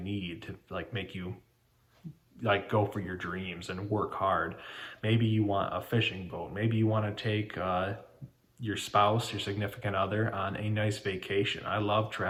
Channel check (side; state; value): both; identical; correlation 1.00